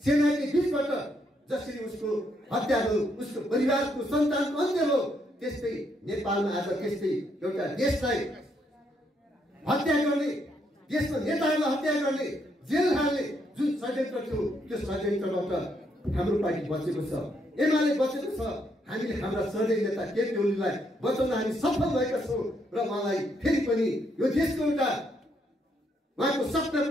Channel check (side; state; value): both; normal; correlation 0.75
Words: सेनाकै बिचबाट जसरी उसको हत्या भयो, उसको परिवारको सन्तानको अन्त्य भयो, त्यस्तै नेपालमा आज त्यस्तै एउटा देशलाई हत्या गर्ने, देशमा नेताहरूलाई हत्या गर्ने, जेल हाल्ने जुन षड्यन्त्र थियो त्यो षड्यन्त्रबाट हाम्रो पार्टी बचेको छ, एमाले बचेको छ। हामीले हाम्रा श्रद्धेय नेता केपी ओलीलाई बचाउन हामी सफल भएका छौँ र उहाँलाई फेरि पनि यो देशको एउटा उहाँको सपना